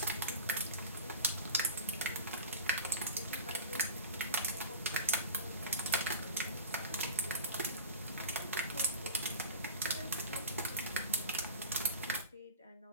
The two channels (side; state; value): both; inverted; correlation -0.35